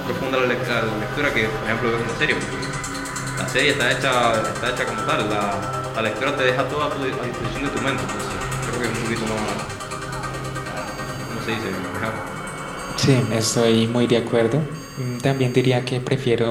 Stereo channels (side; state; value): both; identical; correlation 1.00